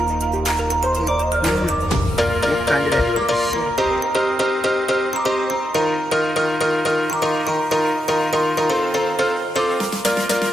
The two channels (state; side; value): normal; both; correlation 0.84